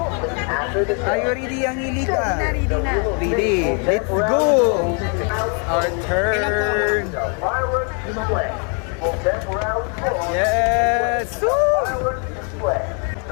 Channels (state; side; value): quieter; right; 39.5 dB